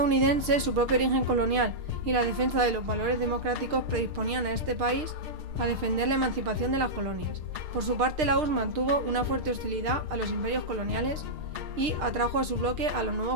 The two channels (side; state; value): left; late; 6.6 ms